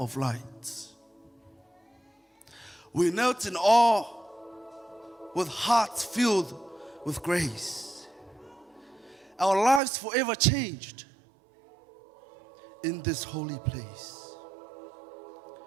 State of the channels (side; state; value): left; drops out; at 9.8 s